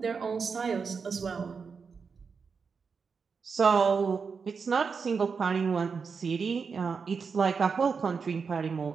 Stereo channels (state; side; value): quieter; left; 5.5 dB